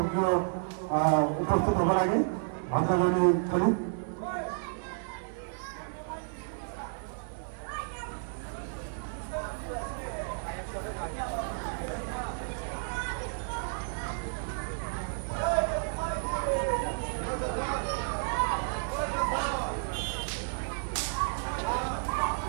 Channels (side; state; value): left; silent; 57 dB below the other